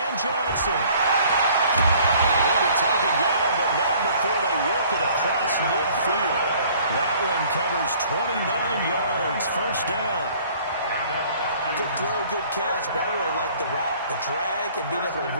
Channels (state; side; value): inverted; both; correlation -0.55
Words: Johnson. He'll be taken down, but not before they work it across midfield. That one covers 29 yards, first down. Good throw, good catch. But I really like the route. The drag and being able to